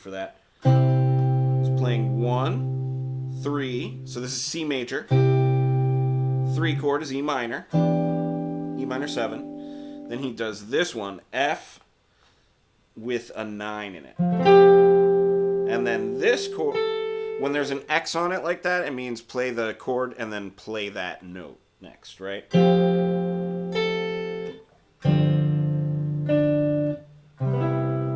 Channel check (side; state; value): both; identical; correlation 1.00